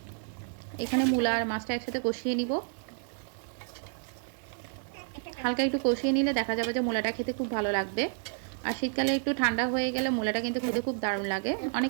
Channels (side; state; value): left; silent; 58 dB below the other